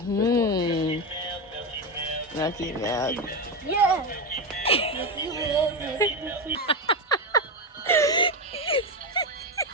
Lucky milk. Yeah.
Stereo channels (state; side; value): normal; both; correlation 0.12